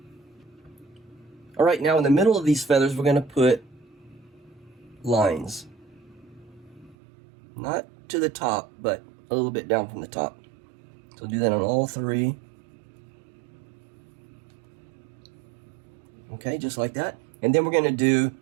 Alright, now in the middle of these feathers we're going to put lines. Not to the top, but a little bit down from the top. So do that on all 3. Okay, just like that. And then we're going to do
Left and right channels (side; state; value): left; drops out; at 7.0 s